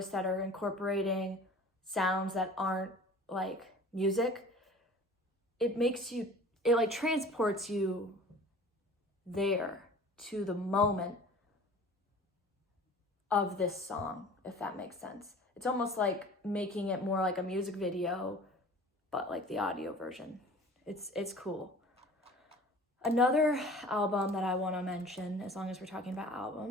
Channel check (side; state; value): both; normal; correlation 0.44